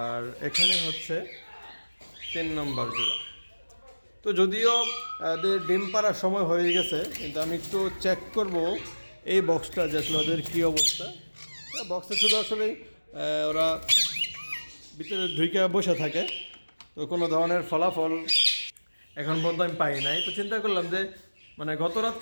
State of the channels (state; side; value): inverted; both; correlation -1.00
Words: আর এখানে হচ্ছে 3 নম্বর জোড়া। তো যদিও ওদের ডিম পাড়ার সময় হয়ে গেছে, কিন্তু আমি একটু চেক করব এই বক্সটা যে আসলে ওদের কী অবস্থা। বক্সে শুধু আসলে ওরা ভিতরে ঢুকে বসে থাকে, তো কোনো ধরনের ফলাফল এখন পর্যন্ত আমি পাই নাই। তো চিন্তা করলাম যে মানে গত